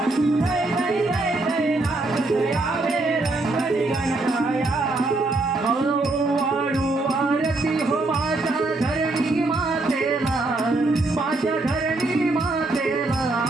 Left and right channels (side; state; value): left; quieter; 3.0 dB